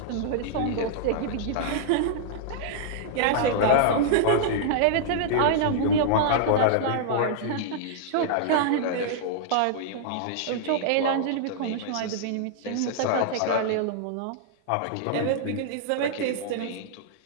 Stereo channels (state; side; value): different; both; correlation -0.01